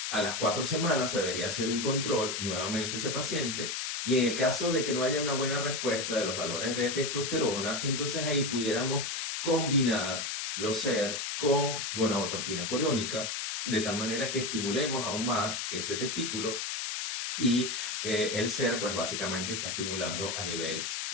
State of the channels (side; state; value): left; noise; hiss, 3 dB below the sound